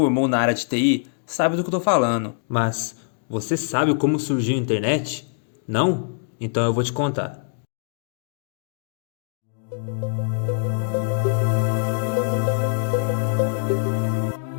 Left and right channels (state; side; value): silent; right; digital silence